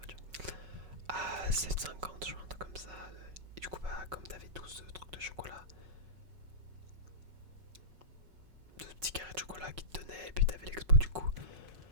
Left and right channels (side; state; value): left; late; 5.4 ms